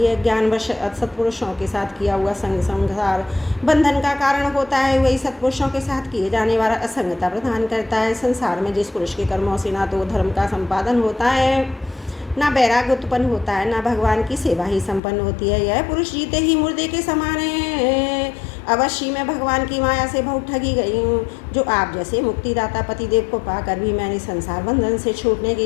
ज्ञानवश सत्पुरुषों के साथ किया हुआ संसार बंधन का कारण होता है, वही सत्पुरुषों के साथ किए जाने वाला असंगता प्रदान करता है। संसार में जिस पुरुष के कर्मों से ना तो धर्म का संपादन होता है, ना वैराग्य उत्पन्न होता है, ना भगवान की सेवा ही संपन्न होती है, यह पुरुष जीते ही मुर्दे के समान है। अवश्य मैं भगवान की माया से बहुत ठगी गई हूँ, जो आप जैसे मुक्तिदाता पतिदेव को पाकर भी मैंने संसार बंधन से छूटने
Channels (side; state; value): right; drops out; at 15.0 s